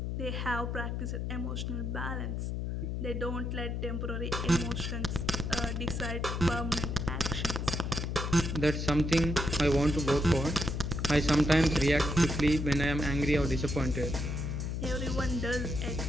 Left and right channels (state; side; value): noise; left; hum, 2 dB below the sound